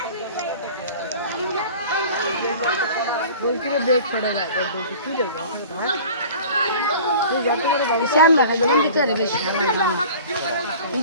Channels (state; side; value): inverted; both; correlation -0.43